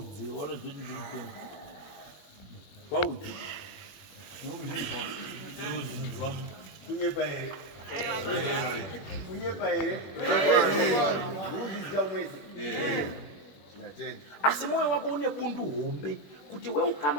wanozoti ndiripenga waudze kunyepa here uzviziva mwese asi mwoyo wako une bundu hombe kuti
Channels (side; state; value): right; late; 21 ms